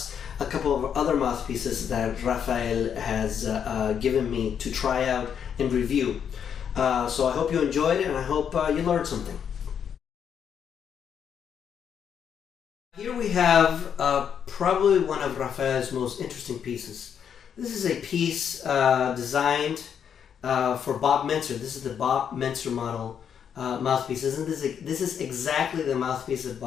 a couple of other mouthpieces that Rafael has given me to try out and review. So I hope you enjoyed it and I hope you learned something. Here we have probably one of Rafael's most interesting pieces. This is a piece designed for Bob Mentzer. This is the Bob Mentzer model mouthpieces, and this is exactly the mouthpiece that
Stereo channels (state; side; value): quieter; right; 8.0 dB